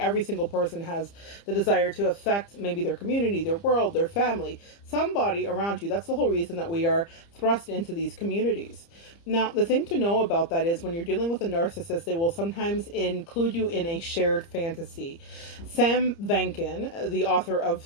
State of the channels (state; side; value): late; right; 30 ms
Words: single person has the desire to affect maybe their community, their world, their family, somebody around you. That's the whole reason that we are thrust into these communities. Now, the thing to know about that is when you're dealing with a narcissist, they will sometimes include you in a shared fantasy. Sam Vankin, the author of